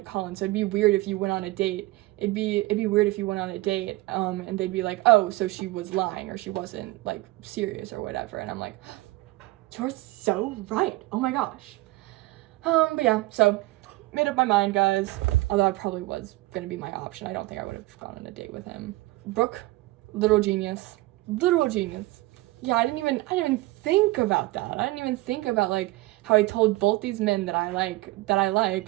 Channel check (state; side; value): quieter; left; 19.9 dB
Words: Colin, so it'd be weird if you went on a date. It'd be weird if you went on a date, and they'd be like, oh, so she was lying, or she wasn't, like, serious or whatever. And I'm like, you're so right. Oh my gosh. But yeah, so made up my mind, guys. Although I probably was gonna be my option. I don't think I would have gone on a date with him. Brooke, literal genius. Yeah, I didn't even think about that. I didn't even think about, like, how I told both these men that I'm not